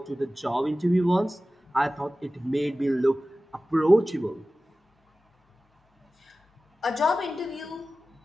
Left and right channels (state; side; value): normal; both; correlation 0.96